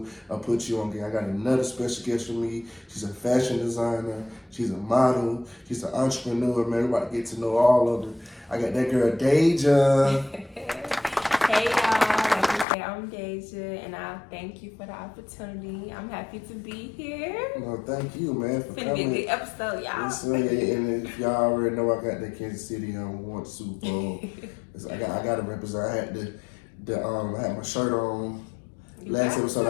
I put you on game. I got another special guest with me. She's a fashion designer. She's a model. She's an entrepreneur, man. We're about to get to know all of them. I got that girl, Deja. Hey, y'all. Like you said, I'm Deja, and I thank you for the opportunity. I'm happy to be here. No, thank you, man, for It's coming. gonna be a good episode, y'all. And if y'all already know, I got that Kansas City won the Super Bowl. I got to represent. I had I had my shirt on. Last episode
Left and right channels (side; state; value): right; drops out; at 12.7 s